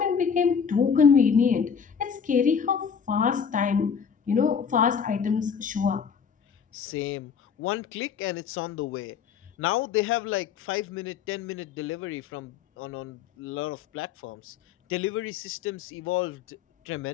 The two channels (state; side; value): quieter; right; 6.8 dB